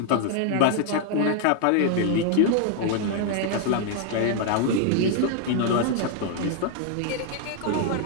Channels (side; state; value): both; different; correlation 0.00